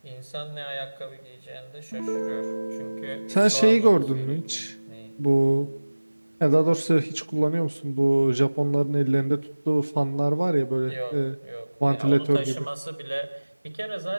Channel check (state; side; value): inverted; both; correlation -1.00